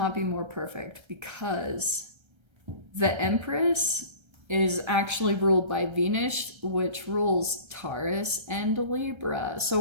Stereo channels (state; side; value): late; left; 1.3 ms